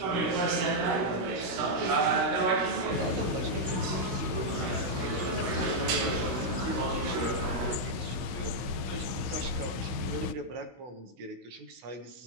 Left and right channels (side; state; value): left; late; 16 ms